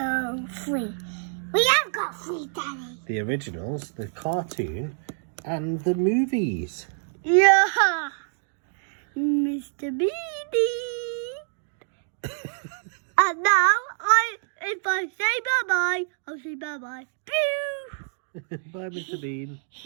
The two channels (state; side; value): silent; left; digital silence